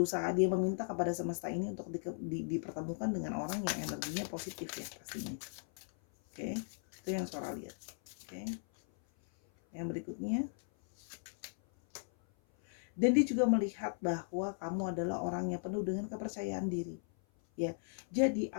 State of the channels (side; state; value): right; silent; 53 dB below the other